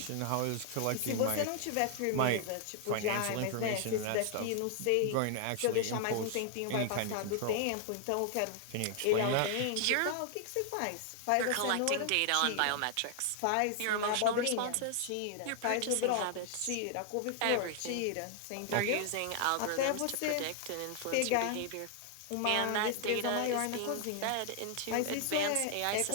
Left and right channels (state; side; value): different; both; correlation 0.00